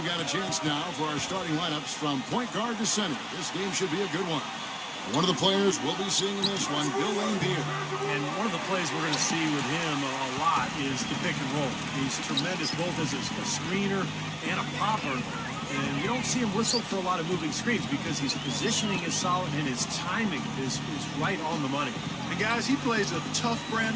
got a chance now for our starting lineups from point guard to center. This game should be a good one. One of the players we'll be seeing in this one, Bill Laimbeer. And one of the plays we're going to see with him a lot is the pick and roll. He's tremendous both as a screener and a popper. And you don't see him whistle for a lot of moving screens because his positioning is solid and his timing is right on the money. And guys, he plays a tough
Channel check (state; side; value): identical; both; correlation 1.00